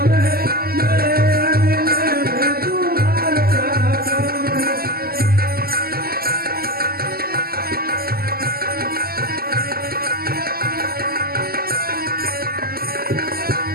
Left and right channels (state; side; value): late; left; 0.44 ms